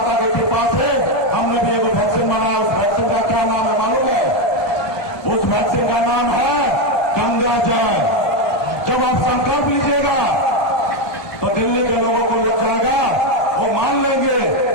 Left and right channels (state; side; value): late; right; 1.2 ms